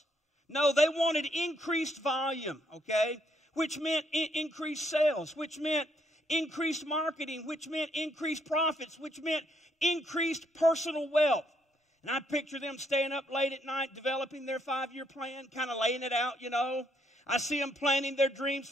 No, they wanted increased volume, okay? Which meant increased sales, which meant increased marketing, which meant increased profits, which meant increased personal wealth. And I picture them staying up late at night, developing their 5-year plan, kind of laying it out, I see them planning their dreams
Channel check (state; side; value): normal; both; correlation 0.72